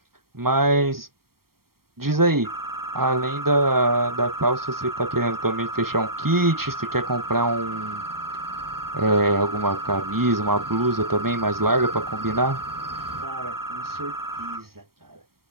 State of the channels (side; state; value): left; late; 0.94 ms